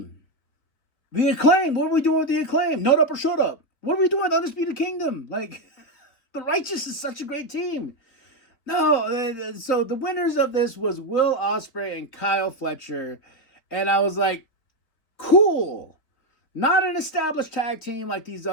The Acclaim. What are we doing with the Acclaim? Note up or shut up. What are we doing with Undisputed Kingdom? Like, the Righteous is such a great team. No, so the winners of this was Will Ospreay and Kyle Fletcher. And I was like, cool. Not an established tag team like these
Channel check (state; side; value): late; right; 3.9 ms